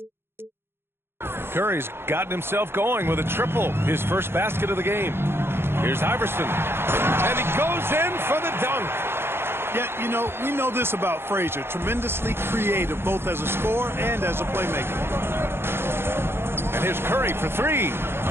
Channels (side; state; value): left; late; 0.11 ms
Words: Curry's gotten himself going with a triple, his first basket of the game. Here's Iverson, and he goes in for the dunk. Yeah, you know, we know this about Frazier. Tremendously creative, both as a scorer and as a playmaker. And here's Curry for three.